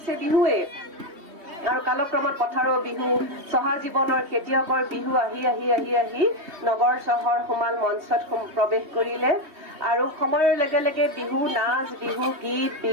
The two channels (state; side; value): late; left; 3.2 ms